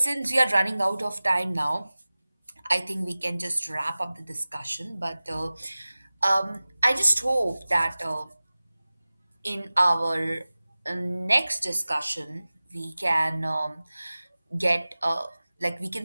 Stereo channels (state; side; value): inverted; both; correlation -0.98